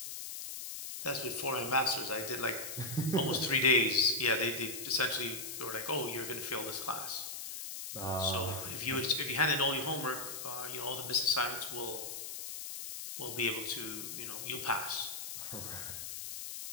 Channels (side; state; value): left; noise; hiss, 7 dB below the sound